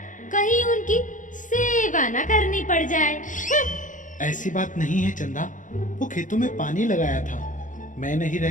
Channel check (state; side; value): late; right; 0.37 ms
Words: कहीं उनकी सेवा न करनी पड़ जाए। ऐसी बात नहीं है चंदा, वो खेतों में पानी लगाया था। मैं नहीं